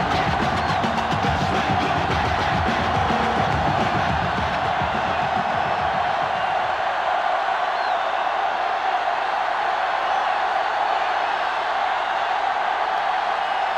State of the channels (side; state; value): both; identical; correlation 1.00